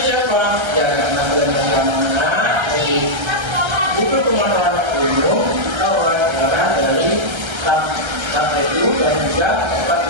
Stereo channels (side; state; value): left; late; 1.3 ms